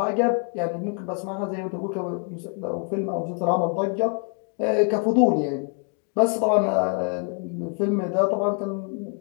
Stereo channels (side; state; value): right; quieter; 39.2 dB